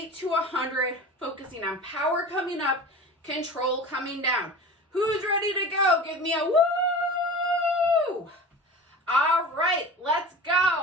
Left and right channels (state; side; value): normal; both; correlation 0.35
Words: to 100, focusing on power coming up, control coming down. Who's ready to go? Give me a woo! All right, let's